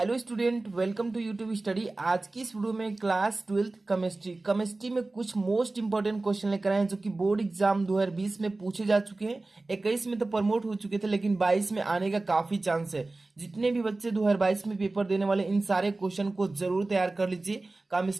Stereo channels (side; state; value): left; quieter; 3.2 dB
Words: student, welcome to YouTube study. आज की इस वीडियो में क्लास 12th केमिस्ट्री में कुछ मोस्ट इंपॉर्टेंट क्वेश्चन लेकर आए हैं जो कि बोर्ड एग्जाम 2020 में पूछे जा चुके हैं। 21 में तो प्रमोट हो चुके थे, लेकिन 22 में आने का काफी चांस है। जितने भी बच्चे 2022 में पेपर देने वाले, इन सारे क्वेश्चन को जरूर तैयार कर लीजिए